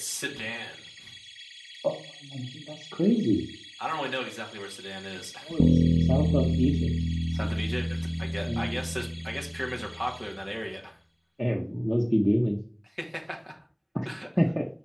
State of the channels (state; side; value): identical; both; correlation 1.00